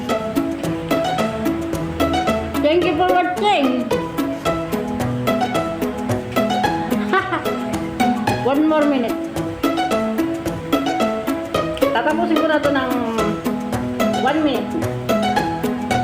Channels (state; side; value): identical; both; correlation 1.00